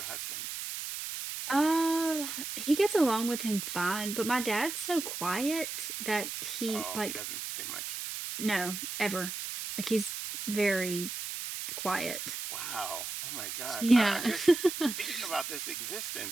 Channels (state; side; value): noise; right; hiss, 6 dB below the sound